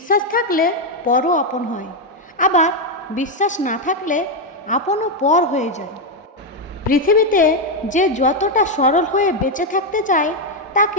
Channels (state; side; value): normal; both; correlation 0.04